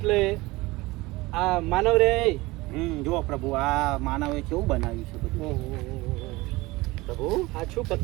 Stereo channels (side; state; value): left; quieter; 21.2 dB